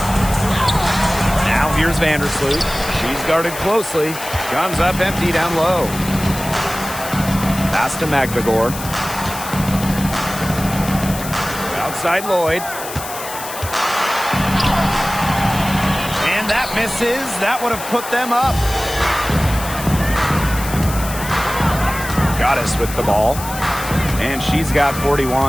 Now here's Vandersloot. She's guarded closely. Comes up empty down low. Pass to Magbagor. Outside Lloyd. And that misses. That would have put them up. Goddess with the ball. And she's got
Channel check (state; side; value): noise; left; hiss, 10 dB below the sound